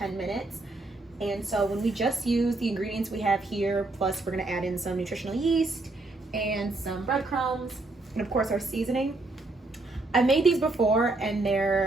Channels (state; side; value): quieter; left; 3.1 dB